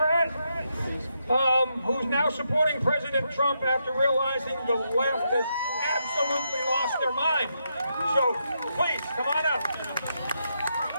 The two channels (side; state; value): both; inverted; correlation -0.81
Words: who's now supporting President Trump after realizing the left has absolutely lost their mind. So, please, come on up.